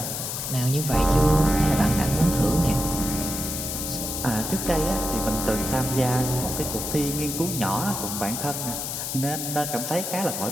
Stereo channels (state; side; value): noise; left; hiss, 4 dB below the sound